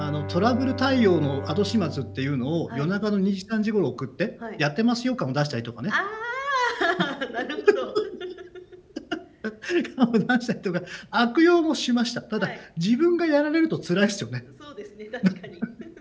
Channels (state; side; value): identical; both; correlation 1.00